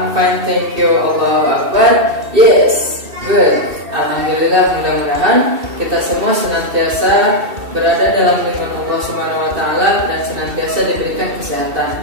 fine, thank you. Allahu Akbar. Yes, good. Alhamdulillah, mudah-mudahan kita semua senantiasa berada dalam lindungan Allah Subhanahu wa taala dan senantiasa diberikan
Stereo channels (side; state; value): left; late; 2.7 ms